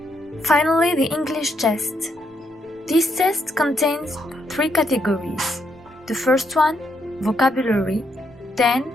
Finally, the English test. This test contains 3 categories. The first one, vocabulary, then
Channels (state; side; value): normal; both; correlation 0.77